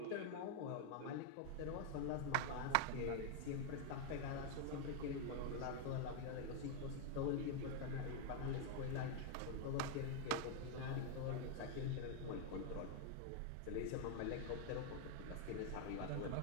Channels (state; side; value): different; both; correlation 0.00